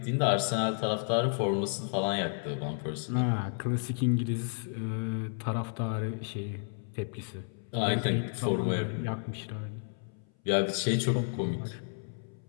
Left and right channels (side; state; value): right; silent; 57 dB below the other